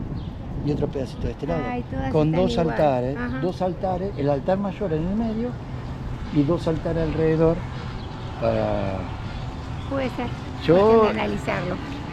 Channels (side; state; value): both; identical; correlation 1.00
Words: y otro pedacito de este lado. Ay, con dos igual. altares, el altar mayor en el medio y dos altares alrededor para... Puede ser. Yo analizarlo.